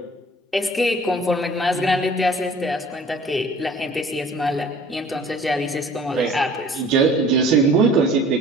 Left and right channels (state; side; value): normal; both; correlation 0.49